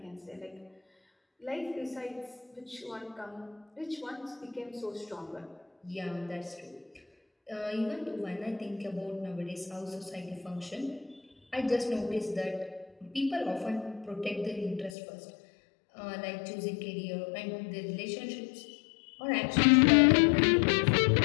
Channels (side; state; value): right; drops out; at 15.0 s